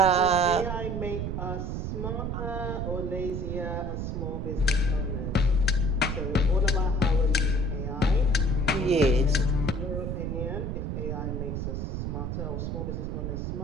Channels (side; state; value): right; noise; rumble, 2 dB below the sound